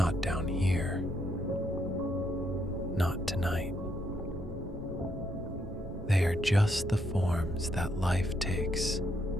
down here. Not tonight. They are just the forms that life takes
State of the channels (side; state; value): both; normal; correlation 0.75